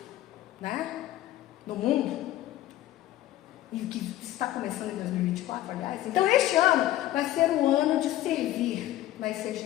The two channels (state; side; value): quieter; right; 14.1 dB